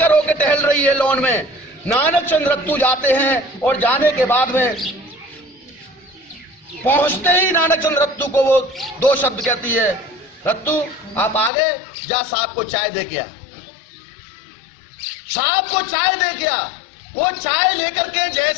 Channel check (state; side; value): drops out; right; at 11.5 s